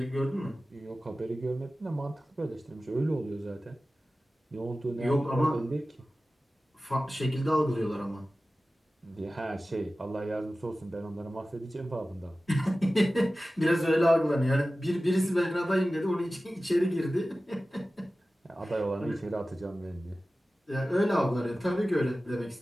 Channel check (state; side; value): normal; both; correlation 0.96